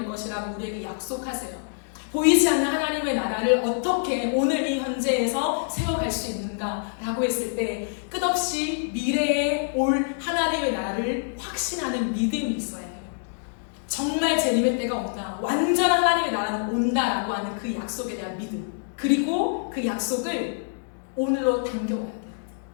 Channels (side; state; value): right; silent; digital silence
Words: 것이라고 우리에게 약속하세요. 보이지 않는 하나님의 나라를 어떻게 오늘 이 현재에서 세워갈 수 있는가라고 했을 때 끝없이 미래에 올 하나님의 나라를 확신하는 믿음이 있어야 해요. 정말 재림의 때가 온다, 완전한 하나님의 나라는 온다라고 하는 그 약속에 대한 믿음, 그리고 그 약속을 오늘로 당겨와야 돼요.